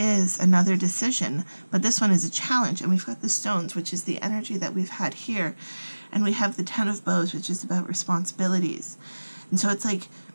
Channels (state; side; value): inverted; both; correlation -1.00